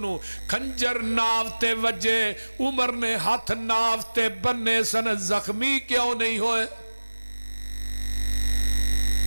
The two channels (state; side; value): inverted; both; correlation -1.00